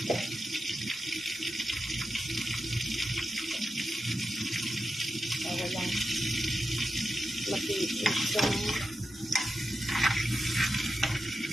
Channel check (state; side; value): normal; both; correlation 0.90